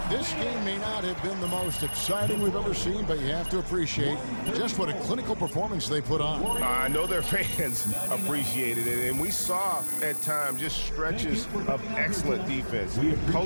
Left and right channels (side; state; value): both; inverted; correlation -1.00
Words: This game may not have been the most exciting we've ever seen, but you have to appreciate just what a clinical performance they put on. I know their fans appreciated it, and we saw at times just stretches of excellent defense.